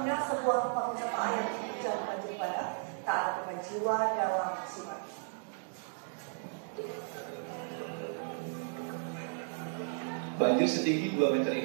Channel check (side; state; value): left; silent; digital silence